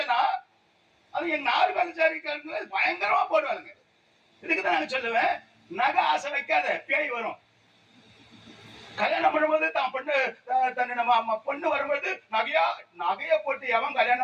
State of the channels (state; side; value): identical; both; correlation 1.00